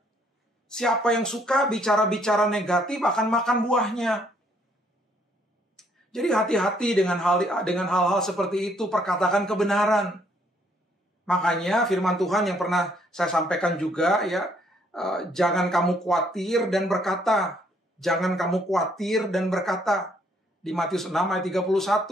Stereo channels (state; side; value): normal; both; correlation 0.67